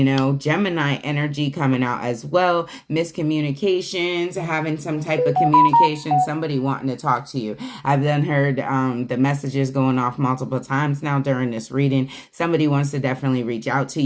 know. Gemini energy coming out as well. Miscommunications, having some type of communication, somebody wanting to talk to you. I've then heard the messages going off multiple times now during this reading. Somebody wants to definitely reach out to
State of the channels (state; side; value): identical; both; correlation 1.00